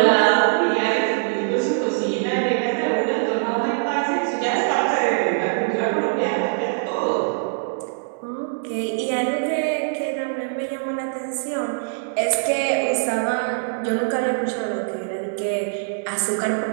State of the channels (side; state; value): left; silent; digital silence